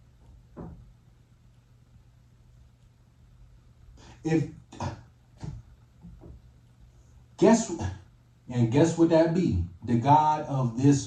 Guess what that be? The God of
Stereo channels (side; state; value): both; identical; correlation 1.00